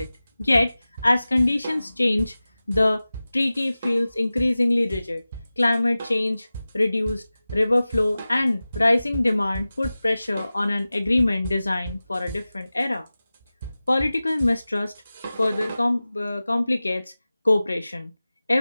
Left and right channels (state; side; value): inverted; both; correlation -0.97